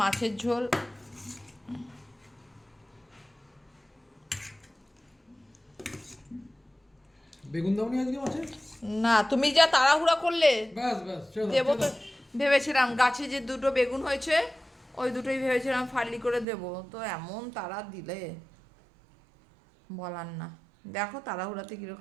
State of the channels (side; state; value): left; drops out; at 16.4 s